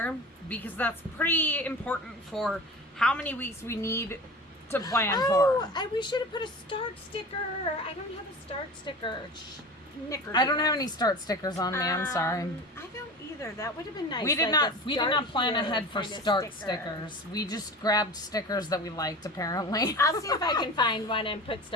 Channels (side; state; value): both; normal; correlation 0.34